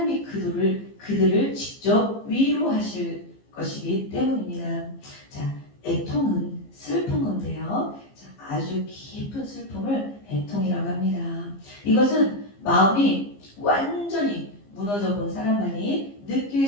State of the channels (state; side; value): late; right; 15 ms